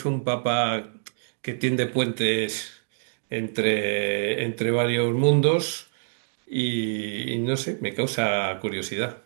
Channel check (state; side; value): silent; left; digital silence